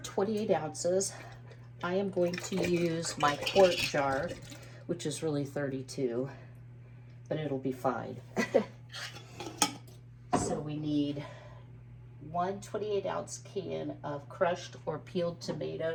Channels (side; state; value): both; identical; correlation 1.00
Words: ounces. I am going to use my quart jar, which is really 32, but it'll be fine. So we need 1 28-ounce can of crushed or peeled